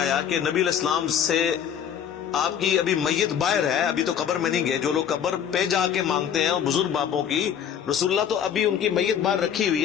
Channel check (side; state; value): right; quieter; 8.8 dB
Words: کہ نبی علیہ السلام سے آپ کی ابھی میت باہر ہے، ابھی تو قبر میں نہیں گئے، جو لوگ قبر پہ جا کے مانگتے ہیں اور بزرگ باپوں کی، رسول اللہ تو ابھی ان کی میت باہر رکھی